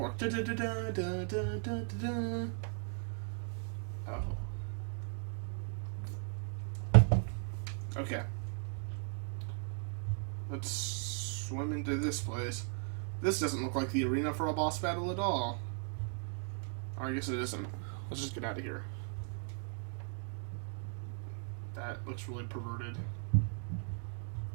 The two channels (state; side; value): silent; left; 53 dB below the other